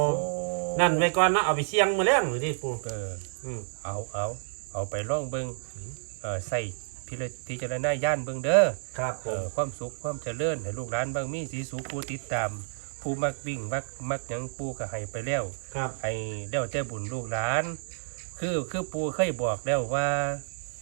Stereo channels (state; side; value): silent; left; digital silence